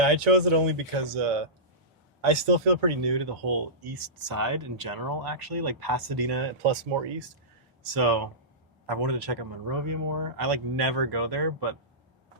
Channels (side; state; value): both; normal; correlation -0.18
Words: I chose it only because I still feel pretty new to the whole east side in general, actually, like Pasadena plus more east. So I wanted to check out Monrovia more. I never go there, but